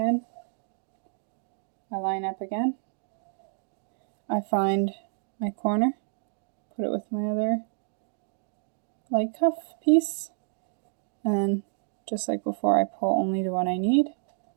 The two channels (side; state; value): left; silent; 59 dB below the other